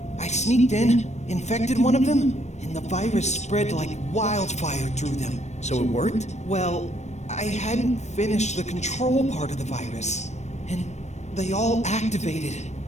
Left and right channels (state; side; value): late; right; 0.33 ms